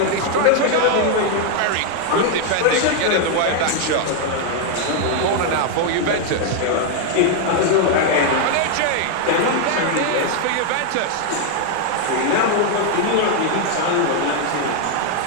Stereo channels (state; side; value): different; both; correlation 0.00